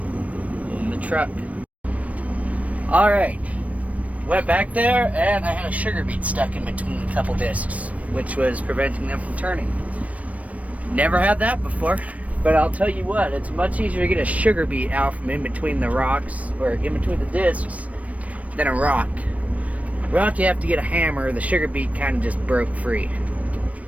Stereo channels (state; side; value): late; left; 0.067 ms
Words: in the truck. All right, went back there and I had a sugar beet stuck in between a couple discs, which was preventing them from turning. Never had that before, but I'll tell you what, it's much easier to get a sugar beet out from in between the rocks, or in between the discs, than a rock. Rock, you have to get a hammer. The sugar beet kind of just broke free.